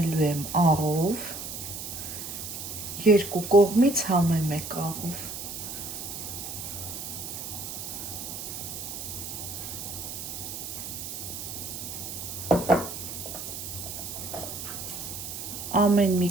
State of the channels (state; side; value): noise; right; hiss, 7 dB below the sound